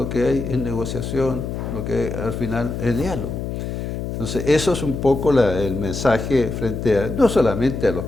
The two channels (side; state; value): left; noise; hum, 5 dB below the sound